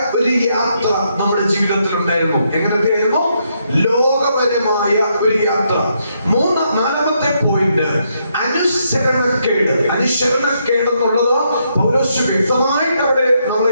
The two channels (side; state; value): both; inverted; correlation -0.77